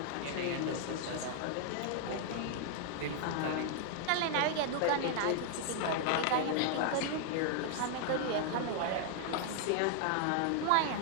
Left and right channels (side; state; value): both; different; correlation 0.00